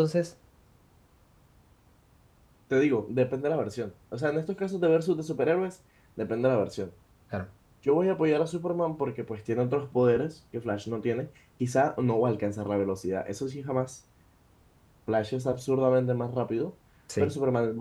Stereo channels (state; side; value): identical; both; correlation 1.00